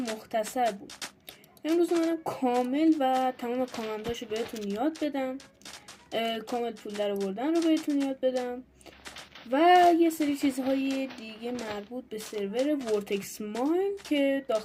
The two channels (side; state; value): both; identical; correlation 1.00